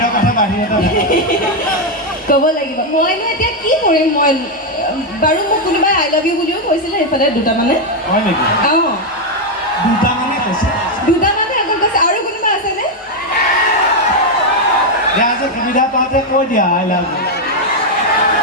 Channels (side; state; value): both; normal; correlation 0.03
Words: কথা বাহিৰতে ক'ব লাগিব। মইনো এতিয়া কি কৰিম? মই বাৰু মোক কোনোবাই আই লাভ ইউ বুলিও কৈছিলে এইফালে দুটামানে। হয় নেকি? অঁ, দুটামানে কৈছে, দুটামানে অকল কৈছে। আৰু কোনোবা আছেনে? এতিয়া আজি সুবিধা পাওঁতে কৈ দিয়া I love you.